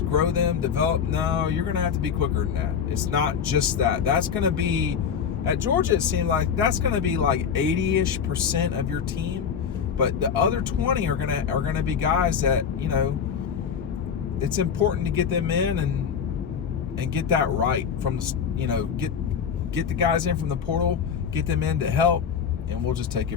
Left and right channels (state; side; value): quieter; right; 7.3 dB